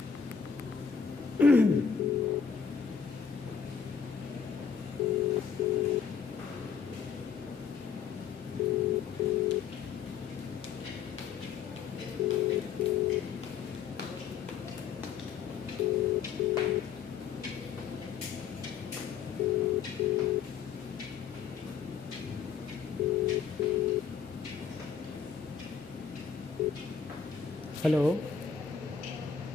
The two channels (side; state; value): right; quieter; 6.6 dB